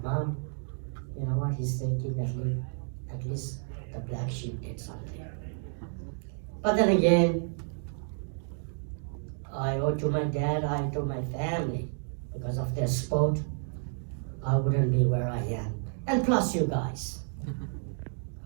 Mom, you know what, he's thinking at least the black sheep did something. But then again, I owe to my dad, I owe to my family. Because of their support, I wouldn't be where I am. And plus you guys.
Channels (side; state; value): left; silent; 57 dB below the other